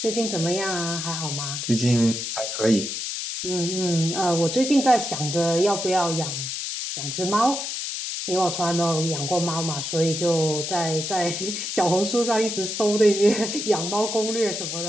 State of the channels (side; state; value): left; noise; hiss, 4 dB below the sound